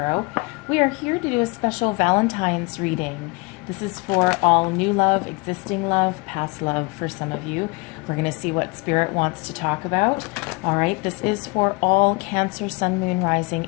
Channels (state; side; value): quieter; right; 27.6 dB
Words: We are here to do a special Valentine's reading. This is for all new love, existing love, past love for some of you. We're going to see what Spirit wants to talk about. All right, this is for all Cancer, Sun, Moon, Rising,